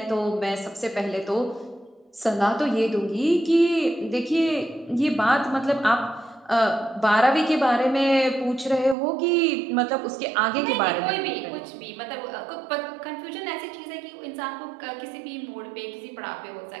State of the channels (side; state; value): left; drops out; at 9.0 s